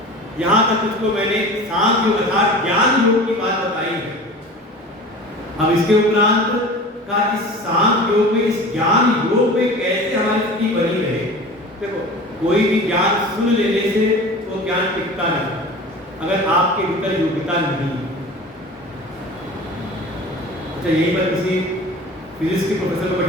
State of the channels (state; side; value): normal; both; correlation 0.37